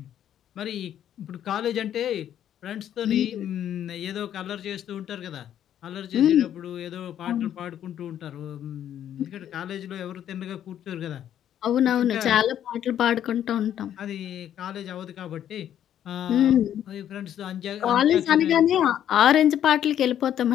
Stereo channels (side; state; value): right; quieter; 10.4 dB